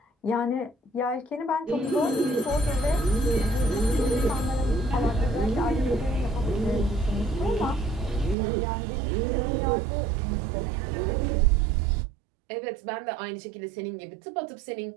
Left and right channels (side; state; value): left; drops out; at 8.3 s